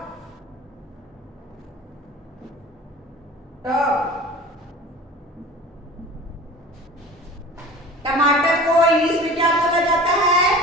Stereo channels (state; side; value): normal; both; correlation 0.40